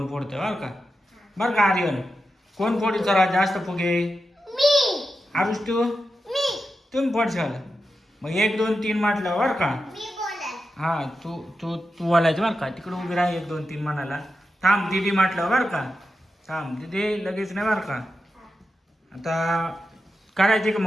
फोडते बरं का. बरं का आर्यन कोण फोडी सर्वात जास्त फुगे. मी. आरुष तू तुम्ही फोडशाल. मग 1 2 3 म्हटलं बरं का. हा तू तू तू बोलायचं बरं का. तिकडे उभी राहा 1 2 3 म्हणाला. थांब दीदी म्हटलं बरं का. थांब दीदी लगेच नाही बरं का. आता करायची का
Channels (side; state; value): both; normal; correlation 0.90